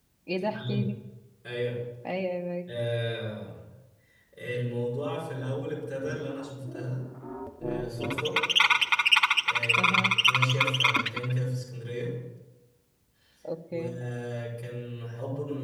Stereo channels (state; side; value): identical; both; correlation 1.00